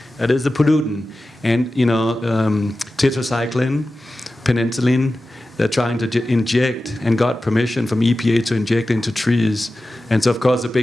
That is the pollutant. And, tetracycline, penicillin, they're trying to inject and got permission from EPA to inject into trees. And so, of course, the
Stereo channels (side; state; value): both; normal; correlation 0.94